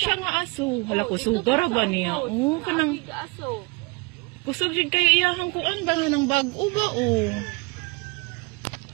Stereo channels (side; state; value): left; quieter; 27.7 dB